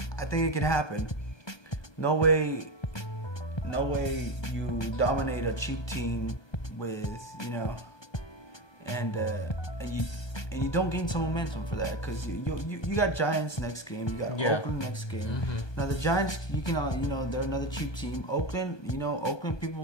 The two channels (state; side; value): late; right; 1.2 ms